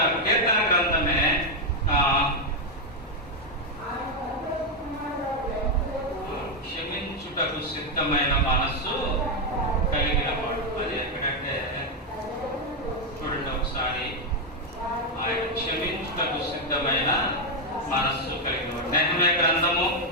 కీర్తన గ్రంథమే క్షమించుటకు సిద్ధమైన మనస్సు కలిగిన వాడు. అది ఎక్కడంటే చూడండి ఒకసారి, ఆయన క్షమించుటకు సిద్ధమైన మనస్సు కలిగిన వాడు. నెహెమ్యా గ్రంథము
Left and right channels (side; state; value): both; normal; correlation 0.03